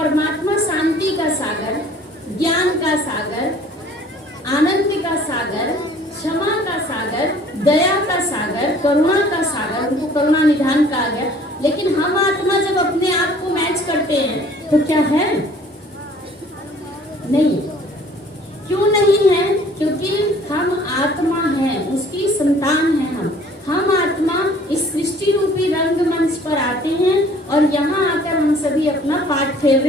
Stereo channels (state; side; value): normal; both; correlation 0.53